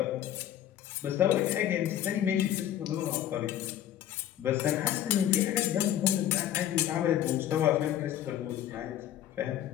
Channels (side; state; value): right; quieter; 11.5 dB